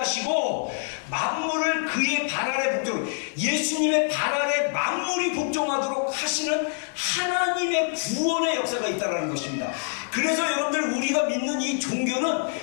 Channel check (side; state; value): right; silent; 61 dB below the other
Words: 만물을 그의 발 아래 복종, 예수님의 발 아래 만물이 복종하도록 하시는 하나님의 구원의 역사가 있다는 것입니다. 그래서 여러분들 우리가 믿는 이